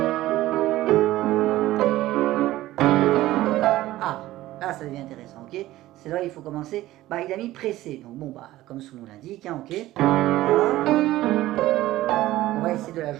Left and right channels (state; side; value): quieter; left; 15.9 dB